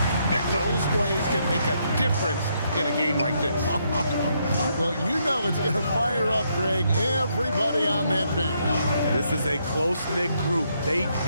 Those plays can make a difference in a game like this. Well, you know it's going to fire up, Greg, everybody on that bench. This is a close-knit group. They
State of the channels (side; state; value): both; inverted; correlation -0.75